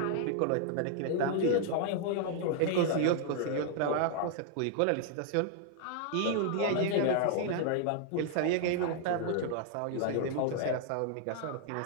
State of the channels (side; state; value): both; different; correlation 0.00